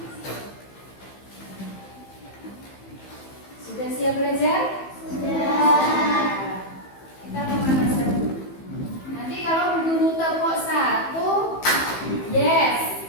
Sudah siap belajar? Kita pemanasan dulu. Nanti kalau guru tepuk 1, yes.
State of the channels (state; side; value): late; right; 15 ms